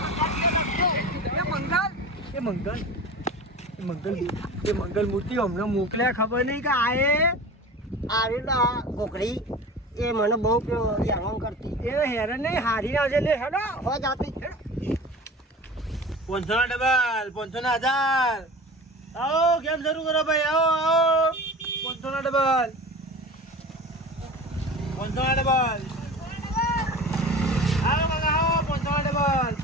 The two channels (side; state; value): both; normal; correlation 0.35